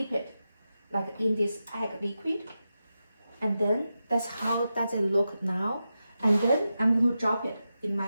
it like in this egg liquid, and then that's how does it look now. And then I'm going to drop it in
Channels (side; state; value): both; inverted; correlation -0.90